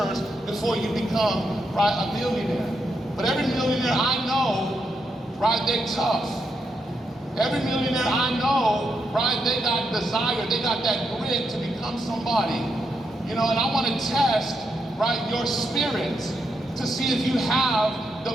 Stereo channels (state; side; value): normal; both; correlation 0.81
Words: before you become, right, a millionaire. But every millionaire I know, right, they're tough. Every millionaire I know, right, they got desire, they got that grit to become somebody. You know, and I want to test, right, your spirit to see if you have the